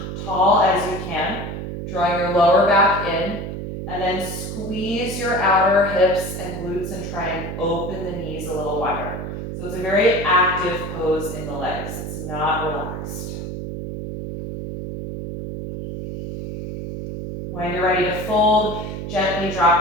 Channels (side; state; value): right; noise; hum, 6 dB below the sound